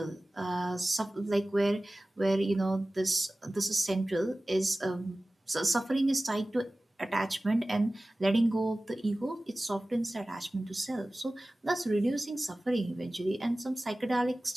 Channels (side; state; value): both; normal; correlation 0.97